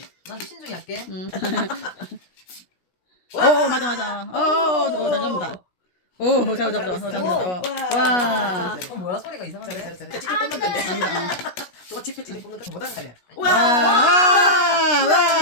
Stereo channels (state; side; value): late; right; 17 ms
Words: 난 신중히 할게. 맞아. 잘 잡는다. 오, 잡는다. 와. 뭐야 소리가 이상한데? 잘해. 찌찌 뽑는 건데. 잘한다. 또 찌찌 뽑는 거 못하는 거네. 와.